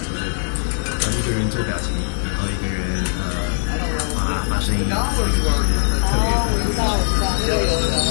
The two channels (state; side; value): silent; right; digital silence